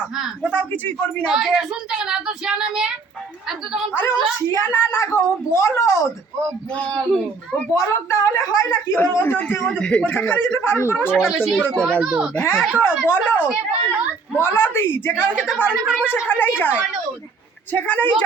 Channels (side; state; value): left; quieter; 4.5 dB